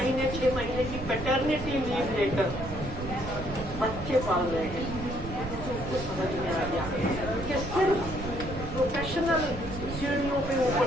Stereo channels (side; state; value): right; noise; rumble, 9 dB below the sound